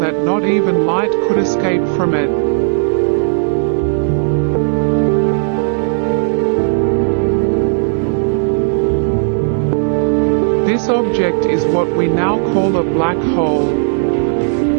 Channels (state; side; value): silent; left; digital silence